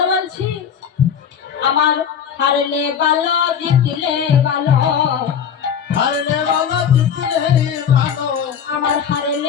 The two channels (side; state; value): right; quieter; 7.9 dB